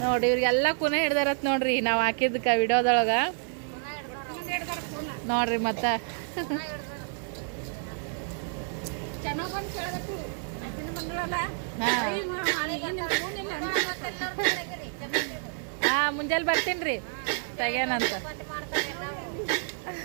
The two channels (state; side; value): silent; left; 59 dB below the other